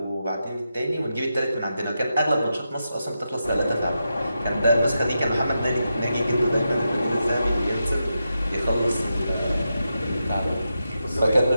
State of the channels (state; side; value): inverted; both; correlation -0.88